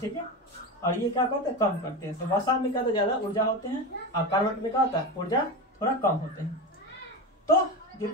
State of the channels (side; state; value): both; normal; correlation 0.22